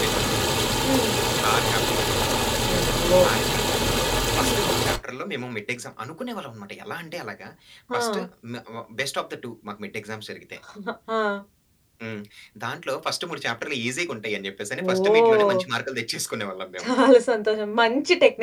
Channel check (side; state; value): both; identical; correlation 1.00